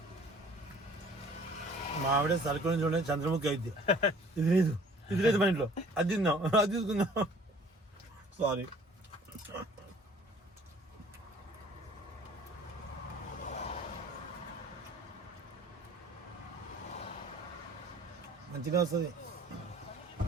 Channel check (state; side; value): normal; both; correlation 0.53